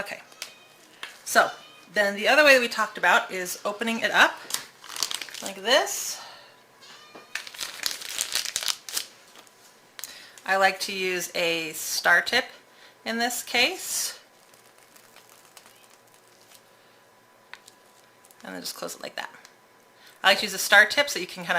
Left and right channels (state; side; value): identical; both; correlation 1.00